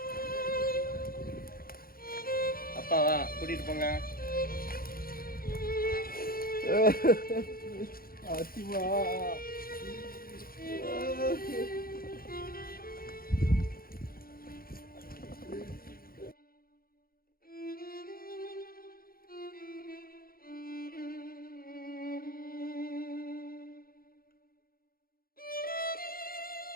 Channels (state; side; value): late; right; 0.43 ms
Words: அப்பாவா கூட்டிட்டு போங்க ஆதிபா